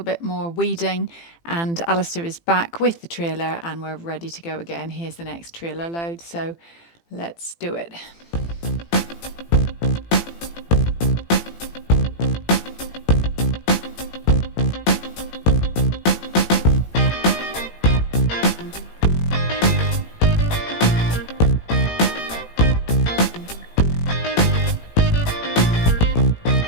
bit more weeding, and Alistair is back with the trailer and we're ready to go again. Here's the next trailer load, so let's do it.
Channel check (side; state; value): right; late; 18 ms